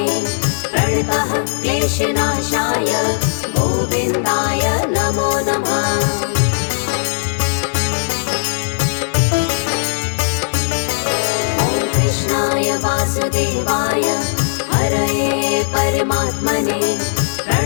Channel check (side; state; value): right; silent; 56 dB below the other